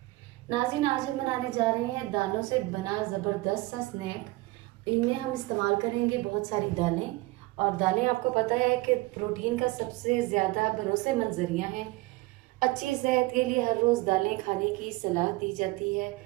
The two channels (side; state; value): left; quieter; 21.5 dB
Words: नाज़रीन, आज हम बनाने जा रहे हैं दालों से बना ज़बरदस्त सा स्नैक। इनमें हम इस्तेमाल करेंगे बहुत सारी दालें, और दालें आपको पता है कि प्रोटीन का सबसे ज़्यादा भरोसेमंद ज़रिया हैं। अच्छी सेहत के लिए हर रोज़ दालें खाने की सलाह दी जाती है।